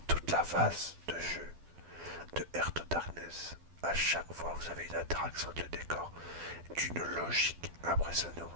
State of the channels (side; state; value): left; late; 12 ms